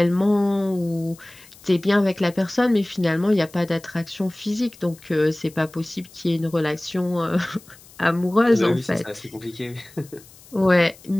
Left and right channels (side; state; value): left; noise; hiss, 23 dB below the sound